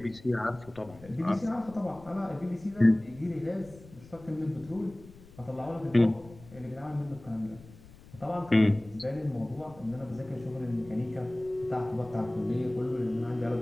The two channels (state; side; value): noise; left; rumble, 21 dB below the sound